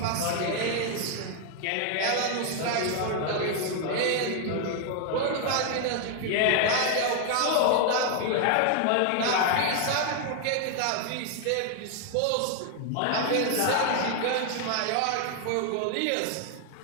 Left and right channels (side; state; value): both; different; correlation 0.00